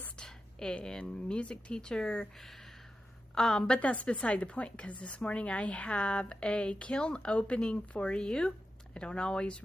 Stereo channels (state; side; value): normal; both; correlation 0.91